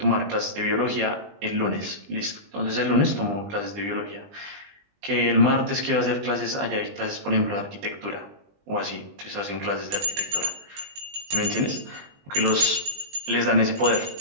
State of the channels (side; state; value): left; late; 20 ms